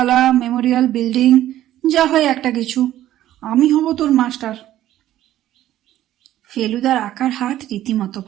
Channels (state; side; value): quieter; left; 13.2 dB